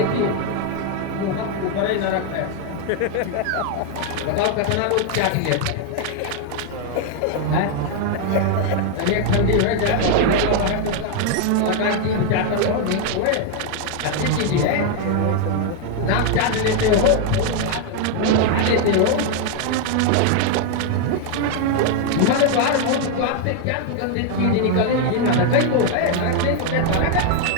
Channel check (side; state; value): both; different; correlation 0.00